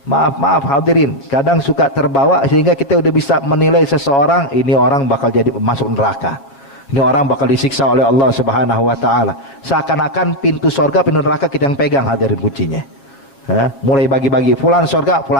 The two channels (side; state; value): right; late; 7.2 ms